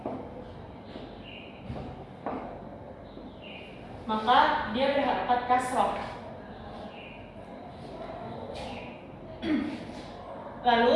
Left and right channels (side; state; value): both; identical; correlation 1.00